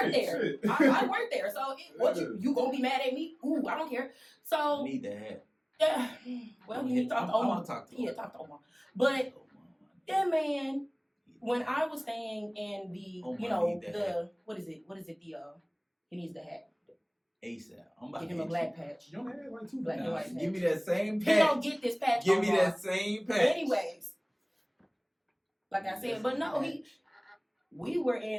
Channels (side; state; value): both; identical; correlation 1.00